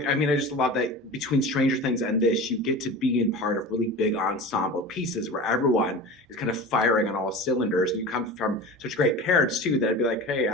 mean, I just love that between Stranger Things and this, you get to be in part of really big ensemble pieces where everyone is kind of firing on all cylinders. And you come from such great parents too, that I'd be like, hey,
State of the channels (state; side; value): normal; both; correlation 0.33